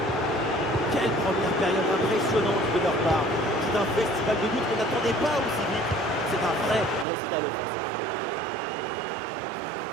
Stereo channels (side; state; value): left; drops out; at 7.1 s